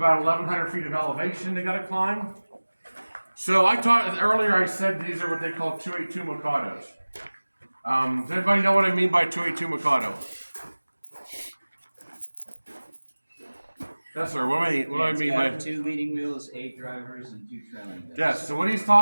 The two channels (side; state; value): both; inverted; correlation -1.00